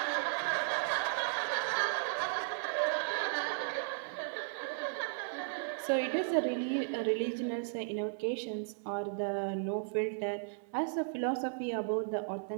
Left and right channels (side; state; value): left; silent; digital silence